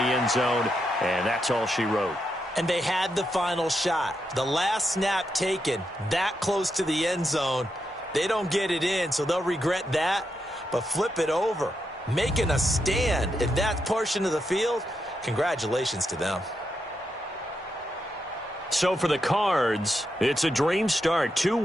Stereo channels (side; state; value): both; normal; correlation 0.83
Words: zone, and that's all she wrote. And they had the final shot. The last snap taken that close to the end zone. They don't get it in, so they'll regret that. But flip it over, making a stand in that portion of the field, congratulations to them. So for the Cards, it's a dream start. 2